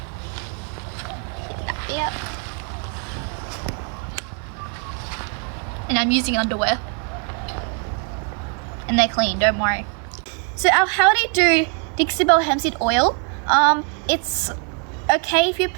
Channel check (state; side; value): quieter; left; 40.0 dB